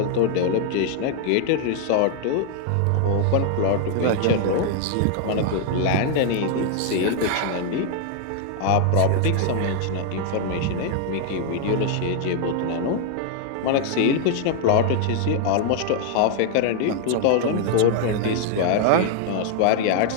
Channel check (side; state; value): both; different; correlation 0.00